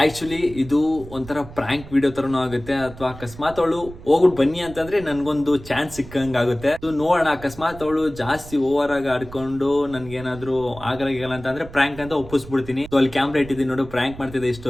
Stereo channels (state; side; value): noise; right; rumble, 16 dB below the sound